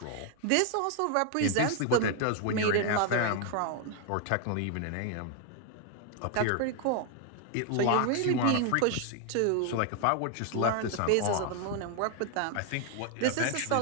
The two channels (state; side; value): different; both; correlation 0.00